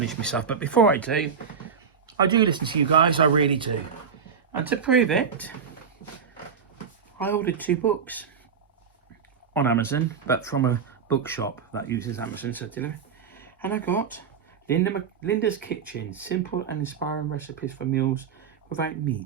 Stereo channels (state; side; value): quieter; left; 6.5 dB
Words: myself, but before I do listen to you guys. I really do. And to prove it, I ordered 2 books on Amazon, but from a bookshop that uses Amazon to deliver. And I got Linda's Kitchen, simple and inspiring recipes for meals without